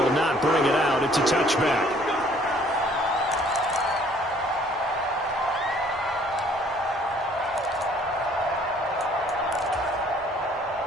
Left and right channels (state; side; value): normal; both; correlation 0.59